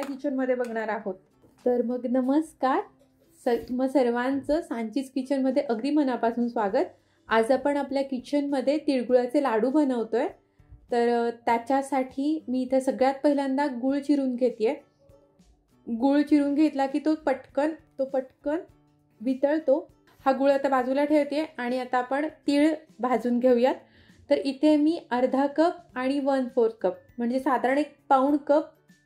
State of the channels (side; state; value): both; identical; correlation 1.00